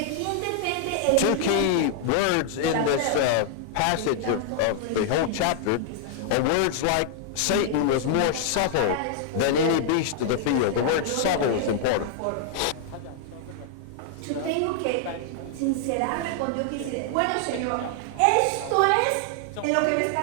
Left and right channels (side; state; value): both; different; correlation 0.00